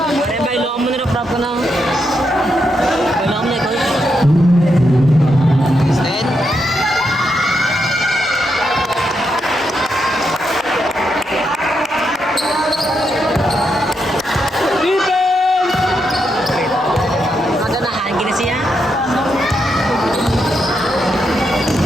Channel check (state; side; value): normal; both; correlation 0.82